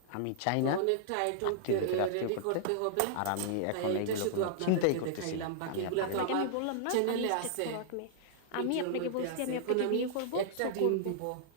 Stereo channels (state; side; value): different; both; correlation -0.01